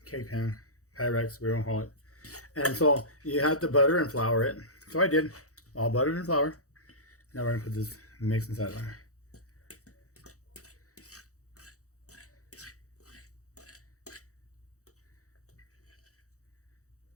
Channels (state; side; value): late; right; 0.65 ms